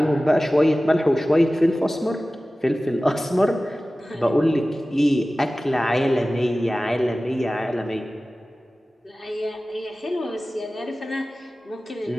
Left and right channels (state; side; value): normal; both; correlation 0.96